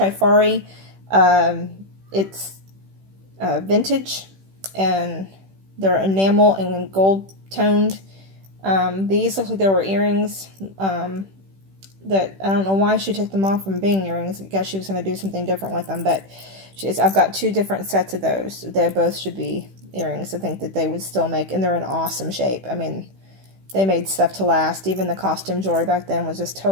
It's vintage, and they're enamel and gold toned. These look like they were earrings. That I don't know why she took them off from being earrings. I guess she was going to do something different with them, but I've got two different sets of those. They both should be earrings. I think that they would still make, and they're in awesome shape. I mean, they made stuff to last. Even the costume jewelry back then was just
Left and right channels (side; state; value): left; late; 15 ms